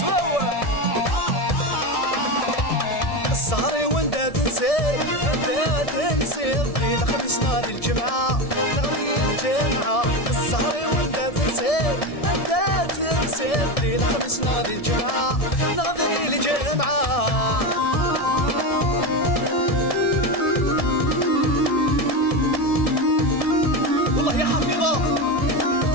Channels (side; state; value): right; late; 1.7 ms